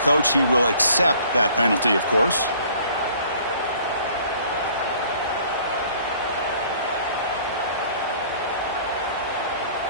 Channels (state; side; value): inverted; both; correlation -0.54